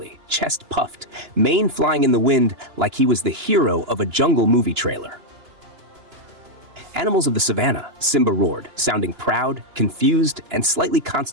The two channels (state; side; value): late; left; 2.9 ms